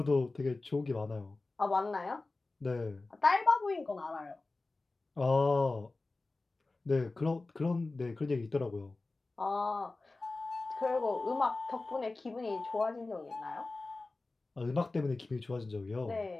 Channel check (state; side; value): quieter; right; 3.3 dB